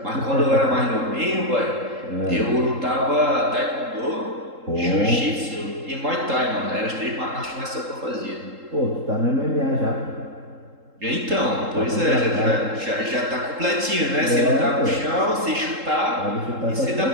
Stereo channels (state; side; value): late; left; 3.7 ms